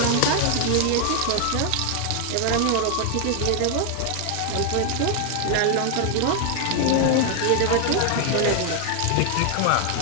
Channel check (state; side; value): different; both; correlation 0.00